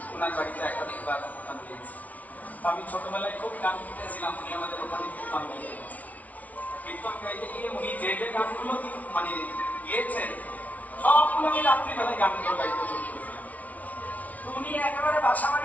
ওনার বাড়িতে একাধিকবার গান দিয়েছি। আমি ছোটবেলায় খুব গান শিখেছিলাম, উনি আমাদের ওখানে কীর্তন গাইতে কীর্তন গাইতে গিয়ে উনি যে যে গানগুলো মানে গিয়েছেন সবগুলো আমি রাত্রিবেলায় গানগুলো গাইতে শুরু করেছিলাম। উনি একেবারে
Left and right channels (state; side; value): late; right; 0.071 ms